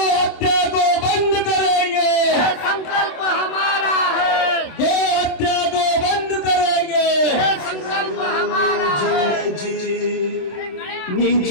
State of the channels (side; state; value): right; late; 26 ms